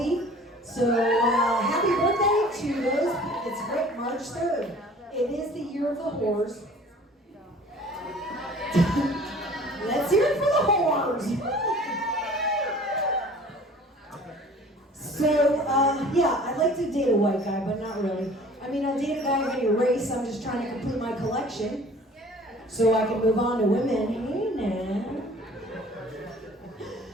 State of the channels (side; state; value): both; normal; correlation 0.48